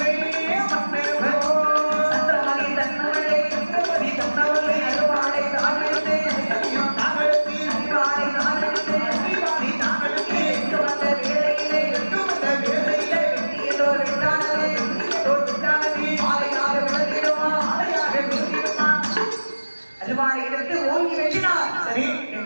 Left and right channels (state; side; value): inverted; both; correlation -1.00